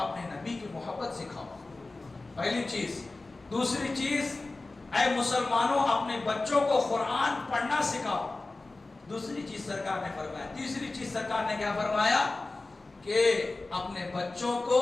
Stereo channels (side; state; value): right; quieter; 3.2 dB